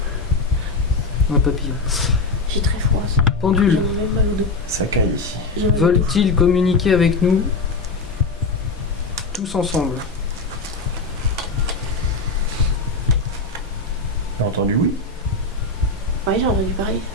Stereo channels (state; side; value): quieter; right; 3.6 dB